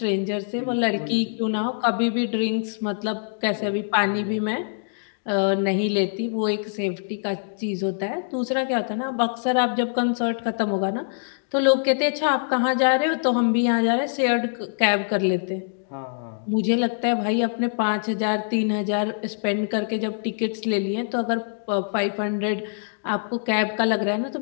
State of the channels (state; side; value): silent; right; digital silence